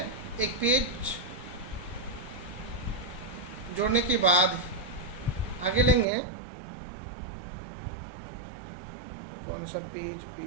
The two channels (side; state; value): left; drops out; at 6.1 s